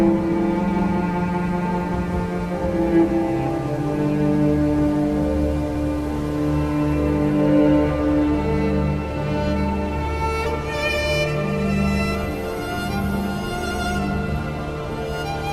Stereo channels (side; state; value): both; identical; correlation 1.00